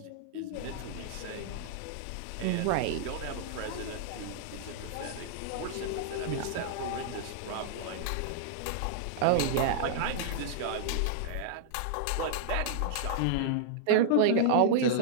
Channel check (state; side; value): different; both; correlation -0.01